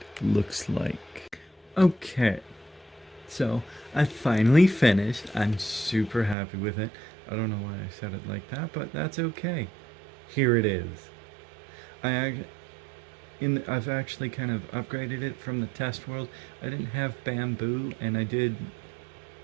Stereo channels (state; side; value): drops out; left; at 6.4 s